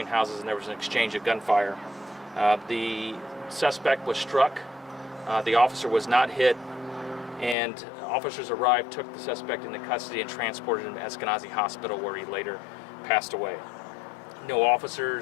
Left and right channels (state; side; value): drops out; right; at 7.6 s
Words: houses, and there was an exchange of gunfire. The suspect was struck. The officer was not hit, and officers arrived, took the suspect into custody, and transported him to Eskenazi Hospital, where he later passed away. No